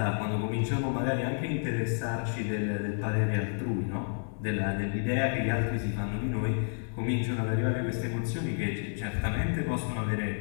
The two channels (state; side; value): silent; right; 58 dB below the other